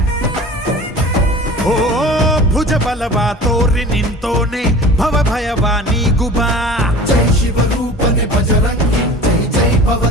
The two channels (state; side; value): normal; both; correlation 0.40